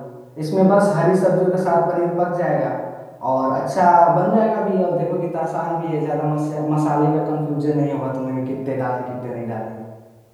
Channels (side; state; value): both; identical; correlation 1.00